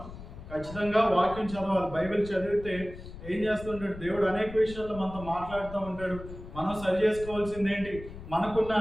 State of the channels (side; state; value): left; noise; rumble, 13 dB below the sound